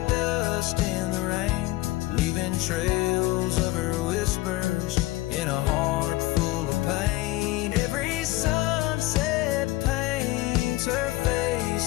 dust in the rain, leaving trails of her whispers in a heart full of pain. Every sunset paints her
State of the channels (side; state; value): right; quieter; 18.8 dB